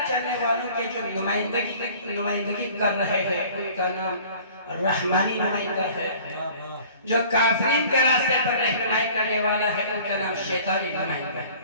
چلنے والوں کے جو نمائندگی کر رہے ہیں ان کا نام رحمانی نمائندہ ہے, جو کافرین کے راستے پر رہنمائی کرنے والا ہے ان کا نام شیطانی نمائندہ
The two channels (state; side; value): inverted; both; correlation -0.49